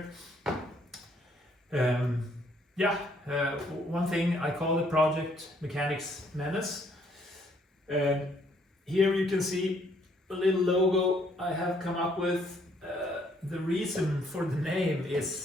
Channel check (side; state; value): both; normal; correlation 0.67